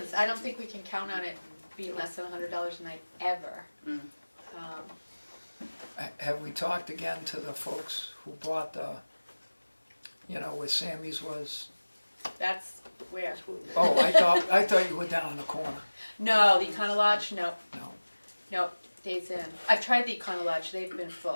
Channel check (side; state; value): both; inverted; correlation -1.00